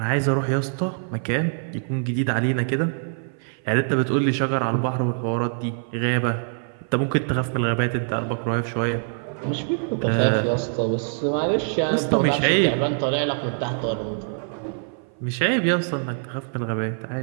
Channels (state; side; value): silent; left; 55 dB below the other